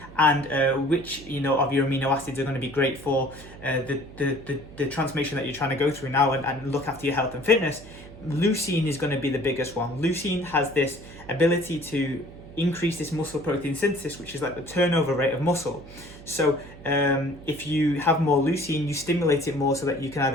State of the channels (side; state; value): right; noise; hum, 18 dB below the sound